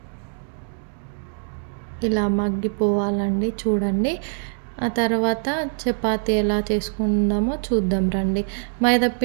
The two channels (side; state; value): left; silent; digital silence